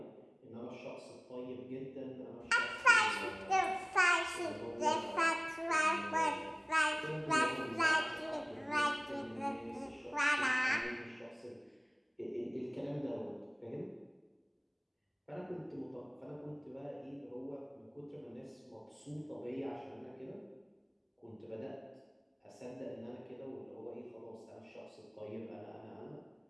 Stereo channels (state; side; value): identical; both; correlation 1.00